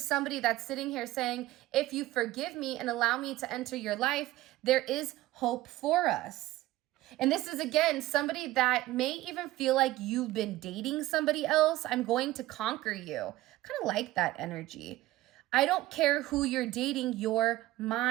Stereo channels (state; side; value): quieter; left; 16.8 dB